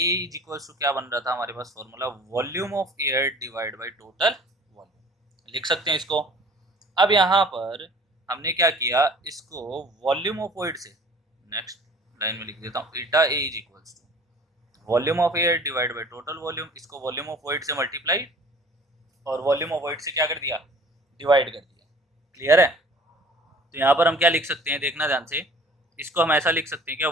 is equals to क्या बन रहा था हमारे पास formula, volume of air divide by total volume, लिख सकते हैं इसको। अब यहाँ पर हमने क्या किया, इसको वॉल्यूम ऑफ वॉइड से नेक्स्ट लाइन में लिख देता हूँ। Eta a is equals to volume of air divide by total volume, इसको वॉल्यूम ऑफ वॉइड से मल्टीप्लाई और वॉल्यूम ऑफ वॉइड से क्या कर दिया, डिवाइड कर दिया। क्लियर है, तो यहाँ पर हम क्या लिख सकते हैं, देखना ध्यान से। इसको हम ऐसा लिख सकते हैं क्या,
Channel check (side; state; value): both; normal; correlation 0.48